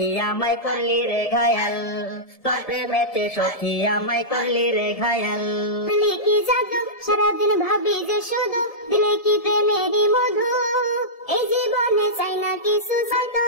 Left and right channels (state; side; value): late; right; 1.7 ms